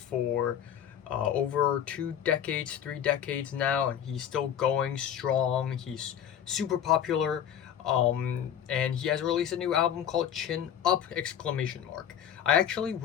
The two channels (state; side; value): quieter; right; 9.6 dB